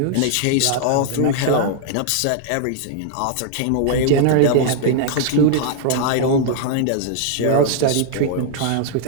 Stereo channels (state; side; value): different; both; correlation -0.01